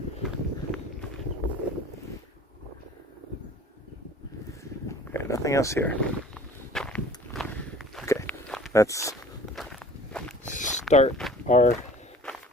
Okay, nothing else here. Okay, let's start our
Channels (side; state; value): both; normal; correlation 0.47